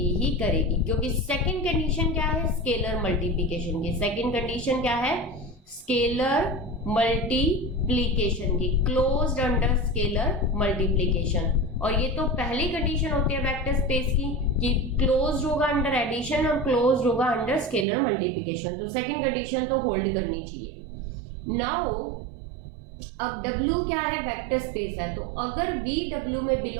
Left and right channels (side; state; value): left; drops out; at 17.9 s